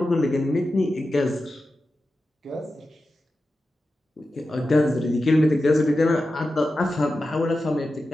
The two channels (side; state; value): both; normal; correlation 0.92